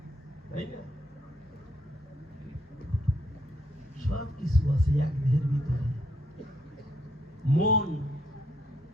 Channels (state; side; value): normal; both; correlation 0.72